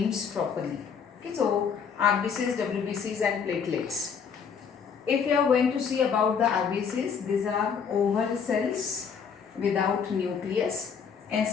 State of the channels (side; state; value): right; quieter; 6.6 dB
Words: properly. Okay, so RBCs, WBCs and platelets. If you are going to see about the RBCs, these are oval cells without nucleus.